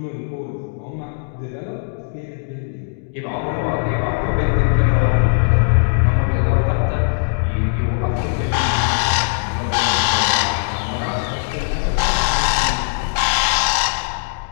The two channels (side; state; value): right; silent; digital silence